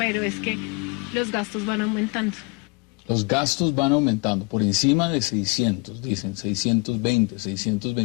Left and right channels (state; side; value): quieter; right; 28.6 dB